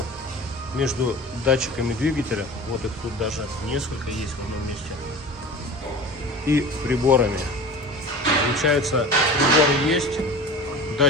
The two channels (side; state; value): both; normal; correlation 0.36